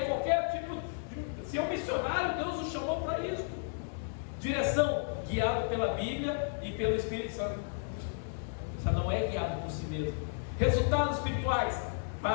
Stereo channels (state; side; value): silent; right; digital silence